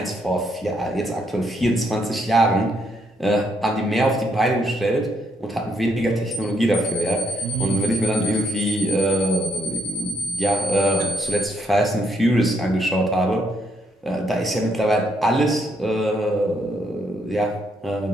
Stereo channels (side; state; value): both; normal; correlation 0.73